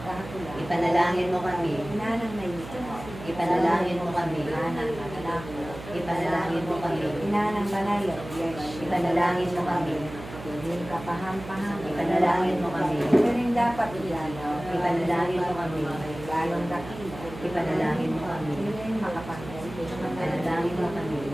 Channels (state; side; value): noise; right; hum, 13 dB below the sound